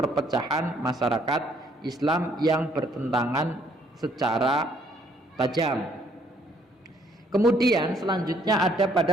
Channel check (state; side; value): normal; both; correlation 0.65